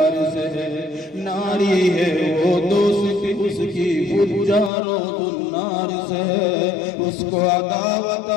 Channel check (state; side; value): drops out; right; at 4.7 s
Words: سے ہے، ناری ہے وہ دوستی اس کی فجار و النار سے ہے، اس کو عداوت